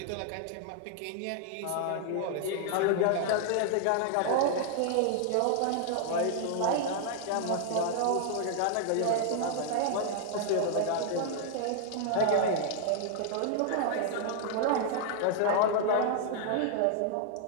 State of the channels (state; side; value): different; both; correlation 0.00